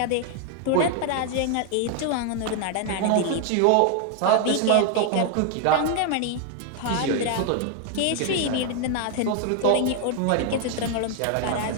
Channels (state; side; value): different; both; correlation 0.00